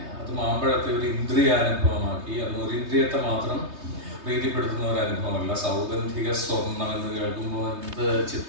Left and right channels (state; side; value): late; left; 3.2 ms